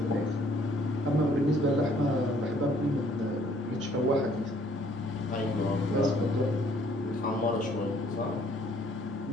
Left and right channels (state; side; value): normal; both; correlation 0.61